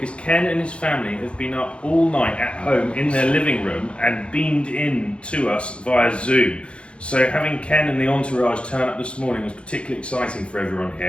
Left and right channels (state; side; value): late; right; 0.058 ms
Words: Ken and his family have been up all night at home in their living room and beamed in to us via Zoom. So having Ken and the entourage turn up this morning was particularly exciting for everyone